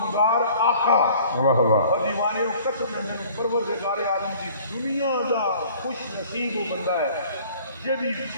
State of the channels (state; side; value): inverted; both; correlation -0.51